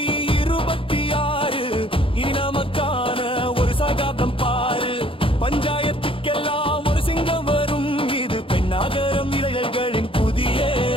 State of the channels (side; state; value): right; late; 0.26 ms